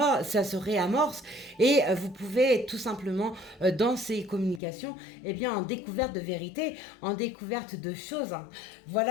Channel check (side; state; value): right; drops out; at 4.6 s